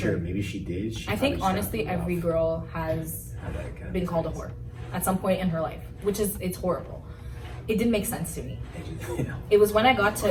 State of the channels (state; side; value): identical; both; correlation 1.00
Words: maybe she did. I think honestly, every girl has been called a whore at some point in her life, it's horrible. It didn't make sense to me. It was when I got